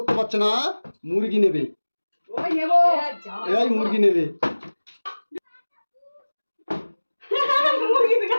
পারছে না, মুরগি নেবে। এই মুরগি নেবে।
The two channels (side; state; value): both; inverted; correlation -1.00